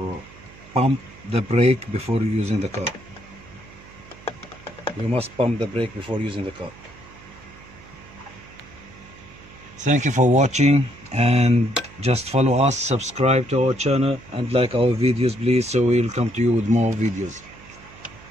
pump the brake before using the car. You must pump the brake before using the car. Thank you for watching, and just follow us, subscribe to our channel, and like our videos please, so we'll come to you with more videos.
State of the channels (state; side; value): noise; right; hum, 22 dB below the sound